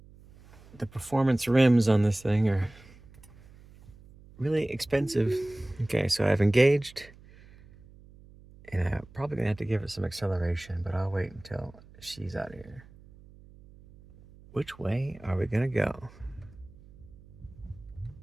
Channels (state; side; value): noise; right; hum, 23 dB below the sound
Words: performance rims on this thing are really expensive. Okay, so I've engaged, and I'm probably gonna have to give it some acceleration, but I'll wait until she's out of here. Which way are we gonna go?